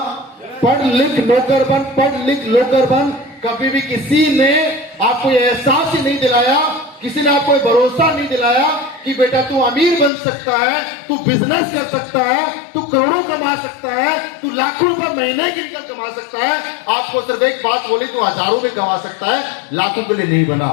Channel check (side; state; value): right; drops out; at 10.1 s